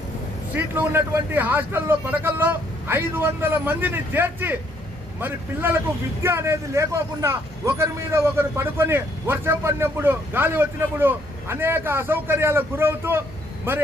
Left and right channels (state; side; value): normal; both; correlation 0.68